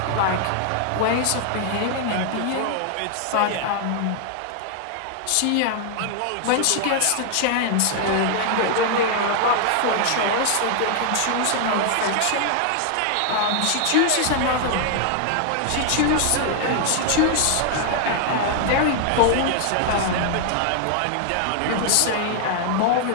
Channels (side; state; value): both; different; correlation 0.00